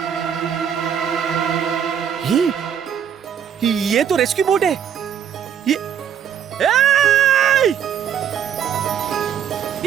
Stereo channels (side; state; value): left; quieter; 8.8 dB